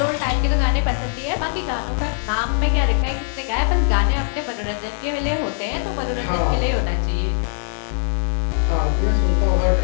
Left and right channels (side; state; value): right; silent; digital silence